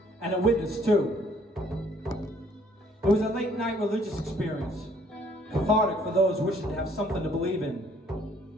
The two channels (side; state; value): both; normal; correlation 0.62